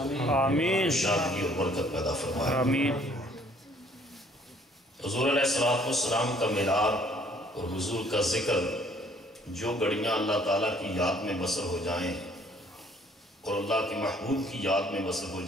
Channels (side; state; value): both; normal; correlation 0.60